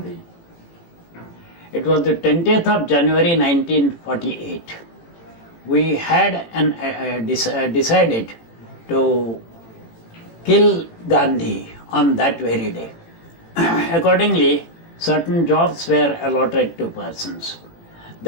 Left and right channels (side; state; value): right; late; 18 ms